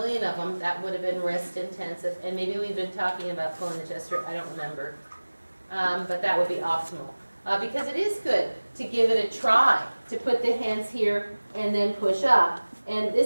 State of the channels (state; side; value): inverted; both; correlation -1.00